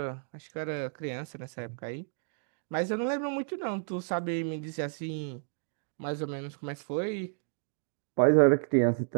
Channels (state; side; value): silent; left; digital silence